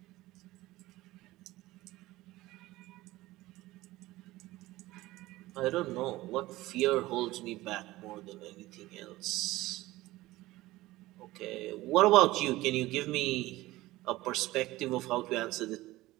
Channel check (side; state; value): left; quieter; 18.1 dB